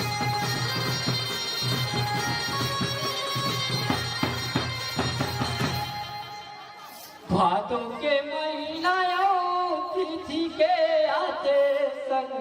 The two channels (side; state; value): both; identical; correlation 1.00